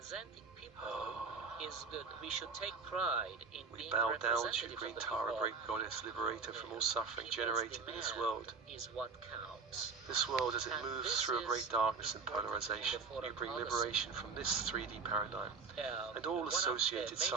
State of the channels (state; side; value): quieter; left; 4.9 dB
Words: people is good. We should take pride in We being bow down to representative you, of Green the Tara, people. great goddess, liberator from all suffering People's generated in this demand world. is what counts. This world, as it And moves this through a is great darkness and important in the polarization, foreign you bring policy. liberation from this 3D paradigm and all One of the associated major